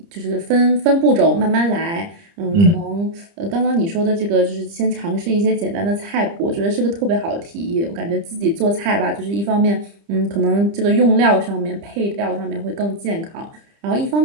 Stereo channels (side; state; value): left; late; 30 ms